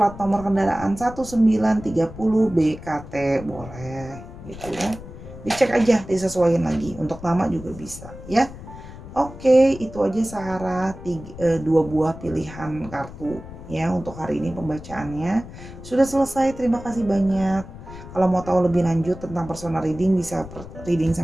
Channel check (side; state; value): left; noise; rumble, 14 dB below the sound